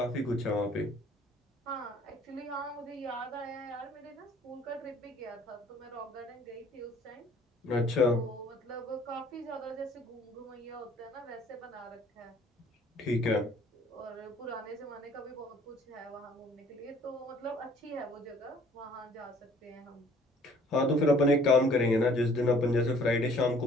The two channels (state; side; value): normal; both; correlation 0.56